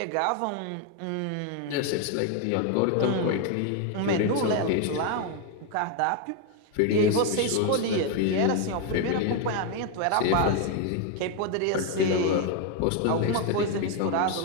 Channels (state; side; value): different; both; correlation 0.01